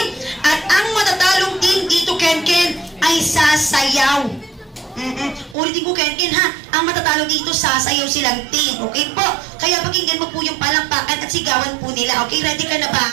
At ang matatalong team dito, Ken Ken, ay sasayaw. Ulitin ko, Ken Ken, ha? Ang matatalo dito, sasayaw silang team. Okay po? Kaya pakinggan mo po yung palakpakan at sigawan po nila. Okay, ready ka na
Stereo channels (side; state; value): left; drops out; at 5.6 s